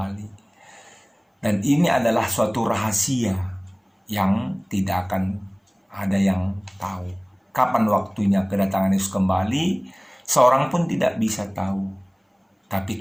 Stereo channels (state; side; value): identical; both; correlation 1.00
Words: Dan ini adalah suatu rahasia yang tidak akan ada yang tahu. Kapan waktunya kedatangan Yesus kembali, seorang pun tidak bisa tahu. Tapi